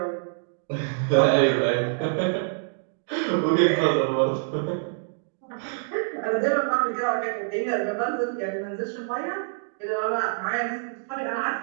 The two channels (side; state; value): left; silent; digital silence